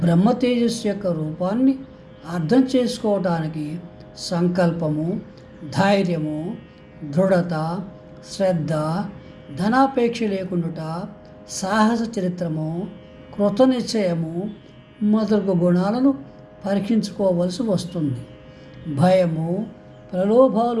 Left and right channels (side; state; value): both; identical; correlation 1.00